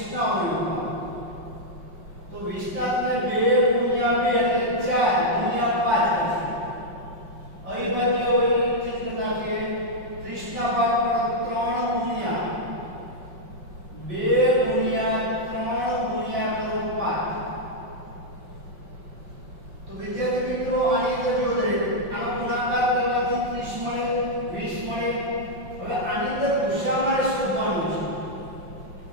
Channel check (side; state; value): left; late; 5.5 ms